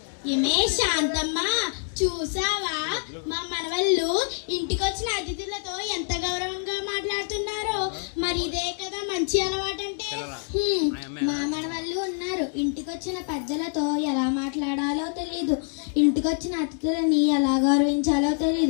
ఏమే శాంతమ్మ, చూసావా మా మనవళ్ళు ఇంటికొచ్చిన అతిథులతో ఎంత గౌరవంగా మాట్లాడుతున్నారు. మరి ఇదే కదా మంచి అలవాటు అంటే. మా మనవళ్ళు ఉన్నారు, ఇంటికొచ్చిన పెద్దలతో ఎలా మాట్లాడాలో తెలియదు, ఇంటికొచ్చిన అతిథులని ఎలా గౌరవించాలో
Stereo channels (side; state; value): right; silent; 55 dB below the other